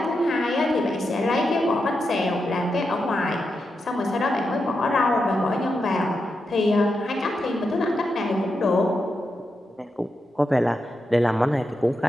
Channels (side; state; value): both; normal; correlation 0.87